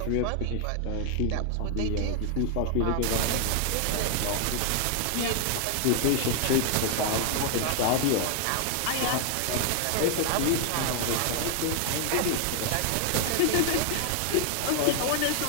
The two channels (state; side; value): different; both; correlation 0.00